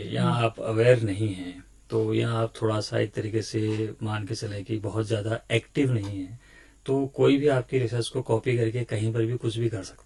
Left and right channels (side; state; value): both; identical; correlation 1.00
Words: या आप अवेयर नहीं हैं, तो या आप थोड़ा सा एक तरीके से मान के चले कि बहुत ज्यादा एक्टिव नहीं है, तो कोई भी आपकी रिसर्च को कॉपी करके कहीं पर भी कुछ भी कर